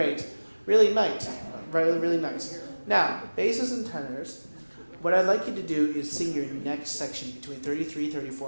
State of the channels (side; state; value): both; inverted; correlation -1.00